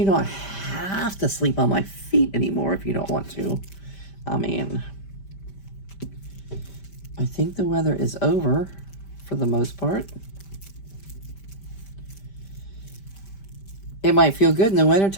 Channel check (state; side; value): late; right; 5.1 ms